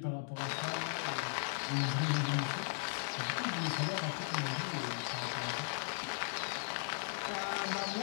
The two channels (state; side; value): silent; right; digital silence